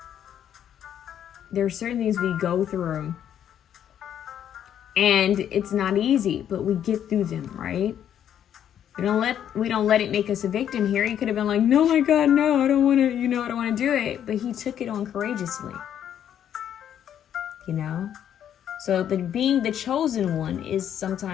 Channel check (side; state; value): right; quieter; 9.8 dB